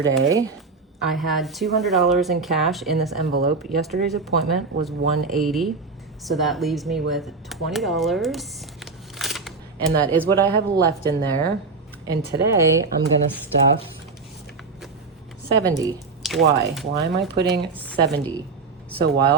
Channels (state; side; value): quieter; left; 4.3 dB